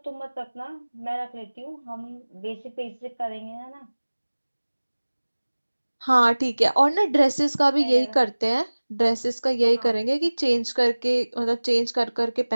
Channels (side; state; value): both; inverted; correlation -1.00